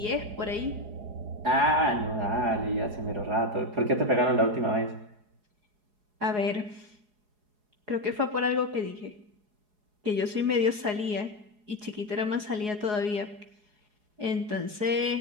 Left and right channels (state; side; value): late; left; 4.8 ms